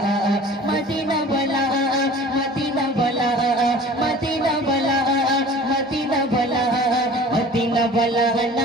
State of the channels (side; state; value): both; normal; correlation 0.44